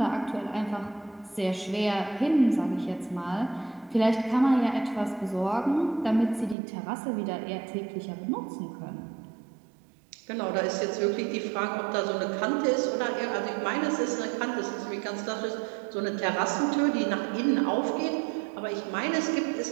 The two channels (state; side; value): drops out; left; at 6.6 s